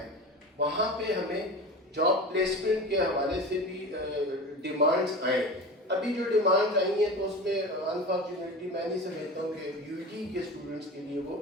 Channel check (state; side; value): normal; both; correlation 0.31